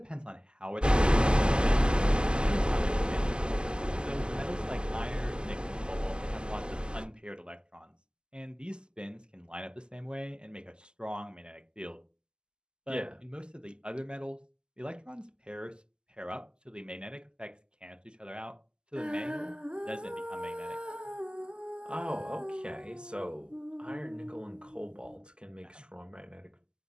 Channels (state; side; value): late; left; 0.047 ms